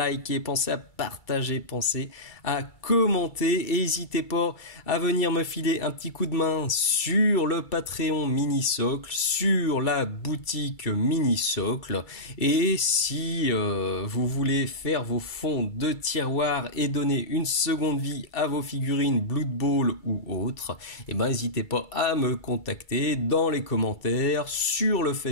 pensez à partager, pensez à commenter et n'hésitez pas à venir me filer un petit coup de main sur le Patreon Mini-Socle, sur la boutique Mini-Socle, et si vous voulez faire vos fonds de tiroir et donner une seconde vie à vos figurines Blood Bowl ou autres, et ben n'hésitez pas à me contacter dans les commentaires, sur le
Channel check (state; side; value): late; right; 2.3 ms